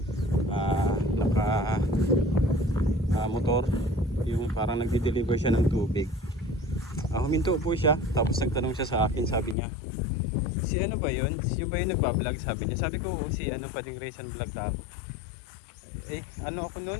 motor, yung parang nagdi-deliver siya ng tubig. Huminto po siya, tapos nagtanong siya sa akin, sabi niya, si ano ba yun? Yung ba yung nagbablog? Sabi niya. Sabi ko, si Bading Rizan Vlog ako. Ako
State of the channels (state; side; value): drops out; right; at 9.6 s